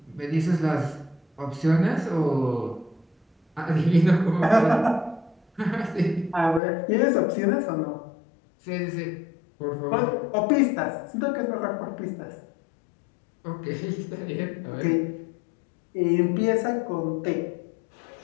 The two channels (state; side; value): drops out; right; at 6.6 s